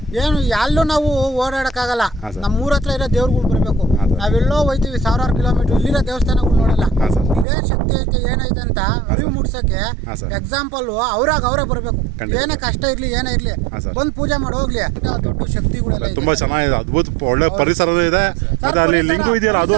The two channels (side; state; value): left; drops out; at 7.5 s